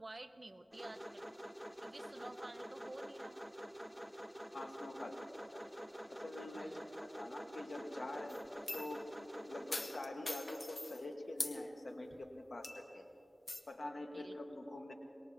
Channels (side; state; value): both; normal; correlation 0.97